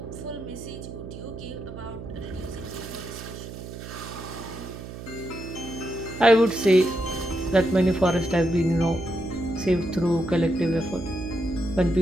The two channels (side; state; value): right; noise; hum, 11 dB below the sound